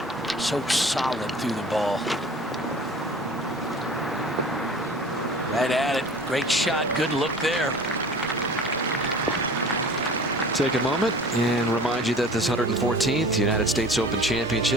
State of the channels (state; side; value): normal; both; correlation 0.43